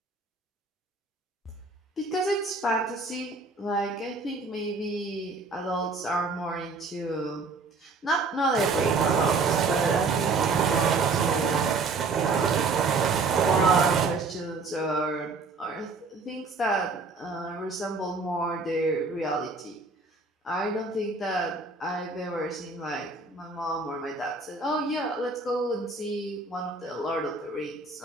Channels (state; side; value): quieter; left; 3.8 dB